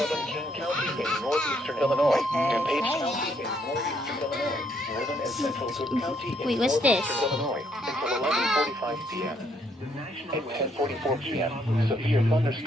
King County in northeastern Illinois, DuPage County in northeastern Illinois, northern and central Cook County in Wait, what's this? northeastern Illinois until 11:45 p.m. At 10:44 p.m., severe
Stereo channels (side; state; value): both; normal; correlation 0.71